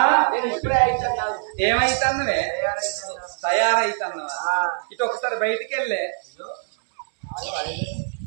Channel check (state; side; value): silent; left; digital silence